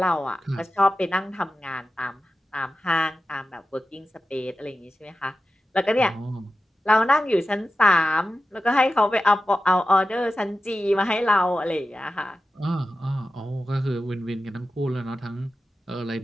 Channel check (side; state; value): both; normal; correlation 0.93